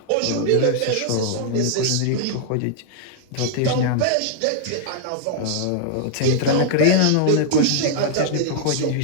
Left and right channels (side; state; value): both; different; correlation -0.01